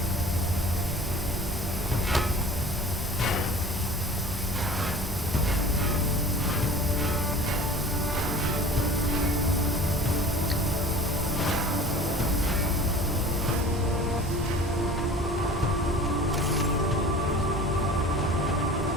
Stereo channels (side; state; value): both; normal; correlation 0.43